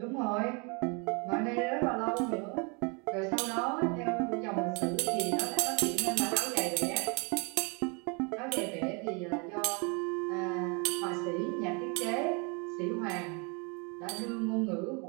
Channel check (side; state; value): left; quieter; 33.0 dB